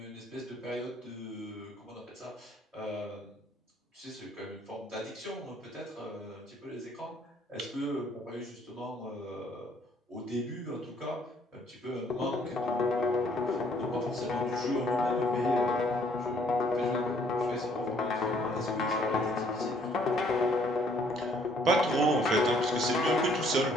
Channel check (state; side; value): normal; both; correlation 0.63